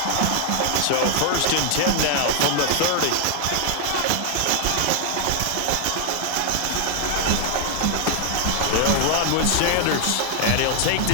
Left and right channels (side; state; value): both; different; correlation 0.00